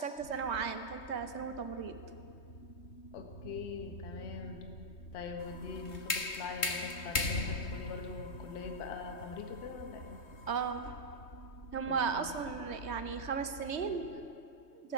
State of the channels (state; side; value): late; right; 3.2 ms